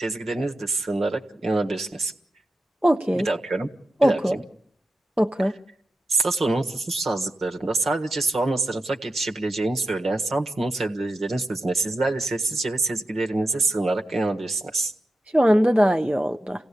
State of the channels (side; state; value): both; normal; correlation 0.89